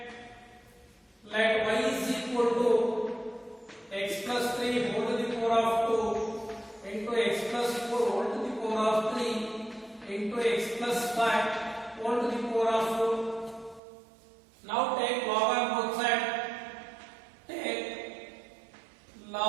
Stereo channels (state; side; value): drops out; left; at 13.8 s